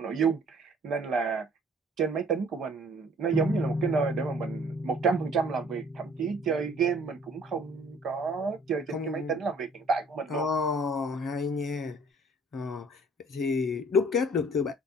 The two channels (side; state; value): both; normal; correlation 0.56